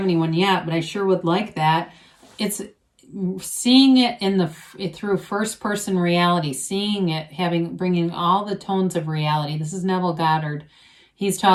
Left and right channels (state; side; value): identical; both; correlation 1.00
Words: anyone yet, but I sure would like that, it's seeing it through first person reality, seeing it, bringing all the tones of reality. This is Neville Goddard. He's